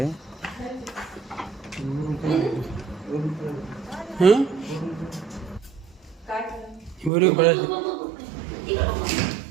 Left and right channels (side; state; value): left; drops out; at 7.1 s